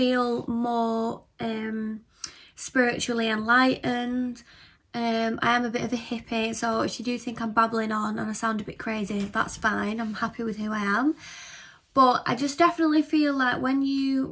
more spiritually enlightened. I am a bit of a hippie, so if you do think I'm babbling on and I sound a bit crazy, that's fine. I'm happy with who I am. But I just definitely feel like when you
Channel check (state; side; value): identical; both; correlation 1.00